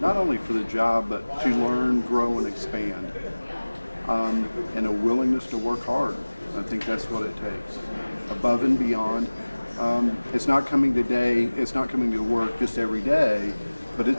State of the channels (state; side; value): inverted; both; correlation -1.00